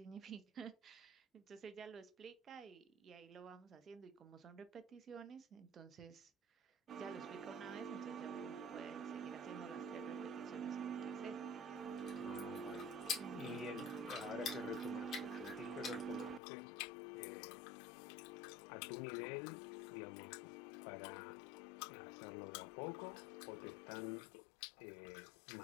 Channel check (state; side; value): drops out; right; at 16.4 s